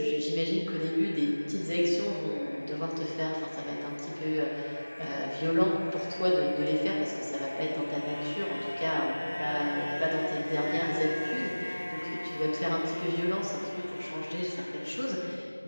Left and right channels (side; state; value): both; inverted; correlation -1.00